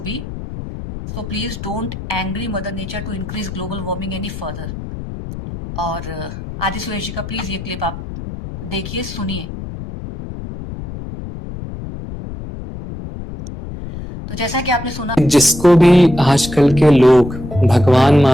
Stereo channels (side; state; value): left; noise; rumble, 10 dB below the sound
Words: be. So please don't angry Mother Nature to increase global warming any further. और आदि सुरेश जी का please ये clip आप देखिए, सुनिए। तो जैसा कि आपने सुना, जिसको भी आजकल के लोग भगवान